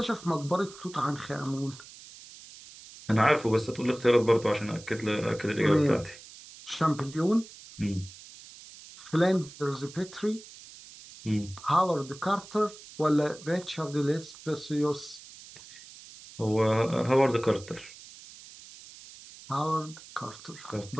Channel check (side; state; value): right; noise; hiss, 18 dB below the sound